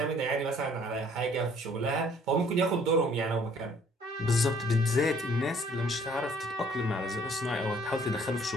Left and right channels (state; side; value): normal; both; correlation 0.59